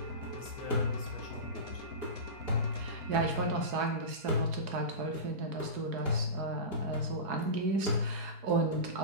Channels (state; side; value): late; left; 4.8 ms